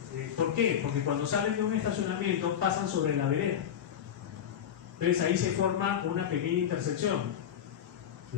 ¿por qué? Porque cuando salen de un estacionamiento pasan sobre la vereda. Entonces ahí se forma una pequeña intersección.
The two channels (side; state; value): right; quieter; 9.2 dB